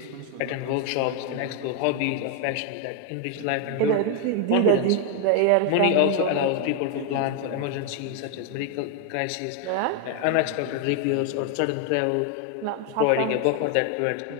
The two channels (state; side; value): different; both; correlation 0.01